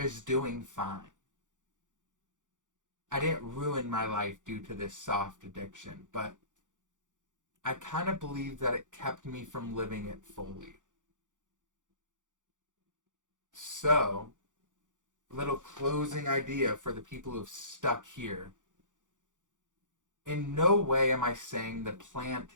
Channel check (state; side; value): late; left; 0.87 ms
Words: doing fine. I didn't ruin my life due to this soft addiction, but I kind of believe that it kept me from living it fully. So, little closing idea for the people who've stuck here. In no way am I saying the plant